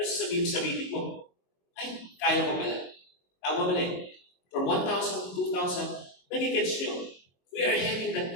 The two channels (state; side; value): late; right; 22 ms